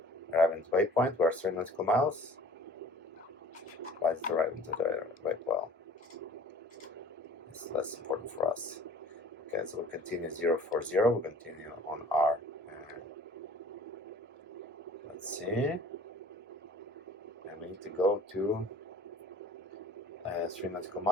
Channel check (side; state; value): both; normal; correlation 0.49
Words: Arriving to waypoint, we're 3 nautical miles. Why is it arriving to the waypoint? It's less important for us. Okay, so we continue 040, we continue on our, let's see, and we need to go to 3 nautical